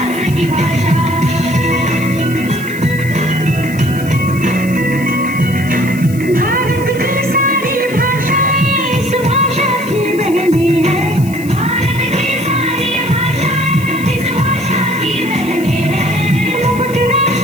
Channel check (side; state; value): left; noise; hiss, 17 dB below the sound